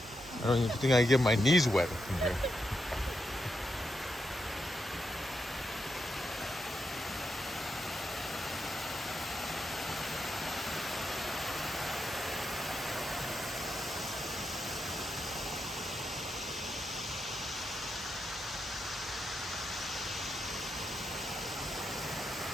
I don't even think I can get my knees wet from here.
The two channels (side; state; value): both; normal; correlation 0.84